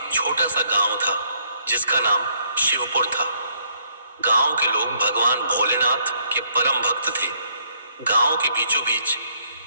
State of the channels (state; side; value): inverted; both; correlation -0.68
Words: छोटा सा गांव था जिसका नाम शिवपुर था। गांव के लोग भगवान भोलेनाथ के परम भक्त थे। गांव के बीचों बीच